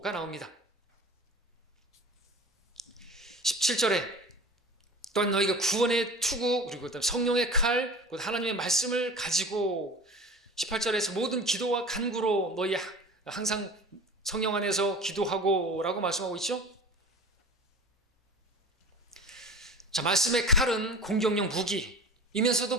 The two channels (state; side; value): normal; both; correlation 0.37